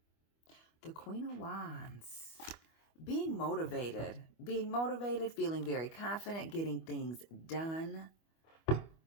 The Queen of Wands. Being motivated, feeling very confident, getting things done.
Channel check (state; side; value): late; right; 25 ms